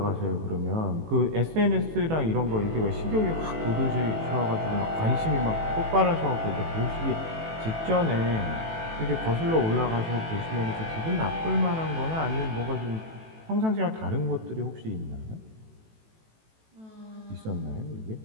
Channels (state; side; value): late; left; 18 ms